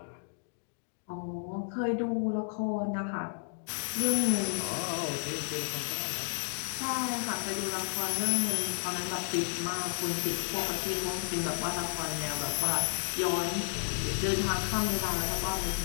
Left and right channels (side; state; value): right; silent; digital silence